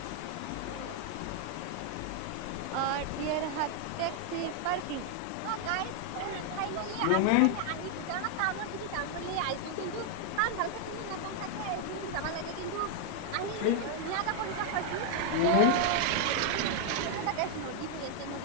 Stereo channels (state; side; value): different; both; correlation 0.00